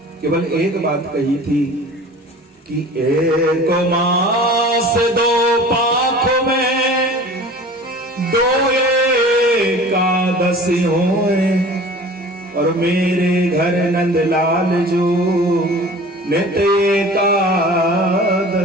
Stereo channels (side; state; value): both; normal; correlation 0.42